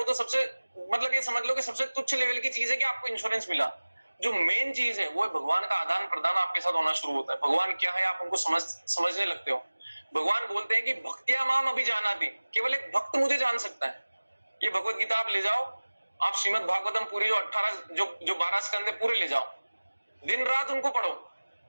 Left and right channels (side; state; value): both; inverted; correlation -1.00